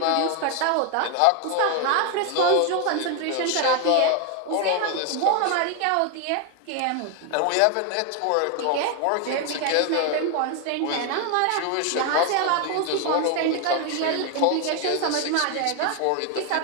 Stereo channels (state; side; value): different; both; correlation 0.01